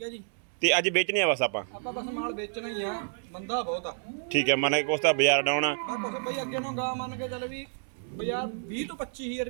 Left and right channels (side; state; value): left; silent; 58 dB below the other